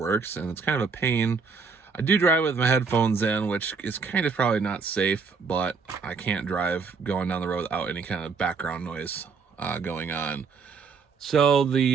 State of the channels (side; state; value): left; quieter; 5.1 dB